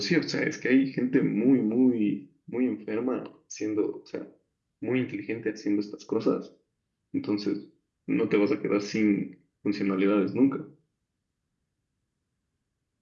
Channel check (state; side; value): identical; both; correlation 1.00